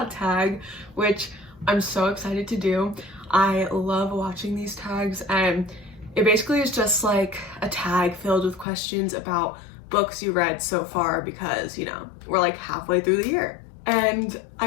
tag, which I'm so excited to do. I love watching these tags, and it basically is just like a tag filled with questions about books you read so far because, you know, we're like halfway through the year. And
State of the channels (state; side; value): drops out; right; at 8.7 s